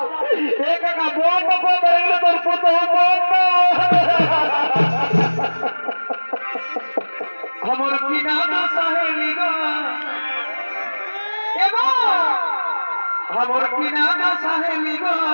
কাকা বন্ধ করে তোর পুতো বন্ধ আমার কিনা সাহেলি গো আমার কিনা সাহেলি গো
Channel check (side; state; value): both; inverted; correlation -1.00